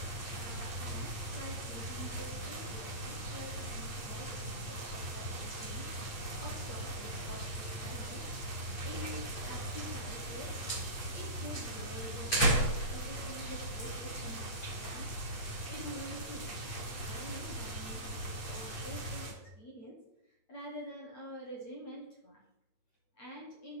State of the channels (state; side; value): late; right; 8.6 ms